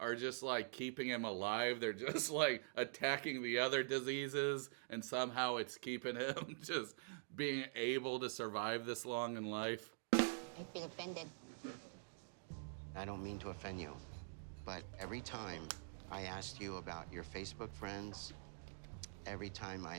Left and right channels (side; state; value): left; silent; digital silence